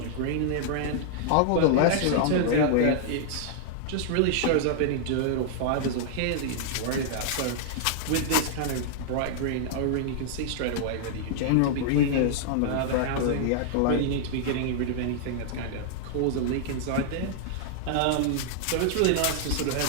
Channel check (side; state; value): both; different; correlation -0.01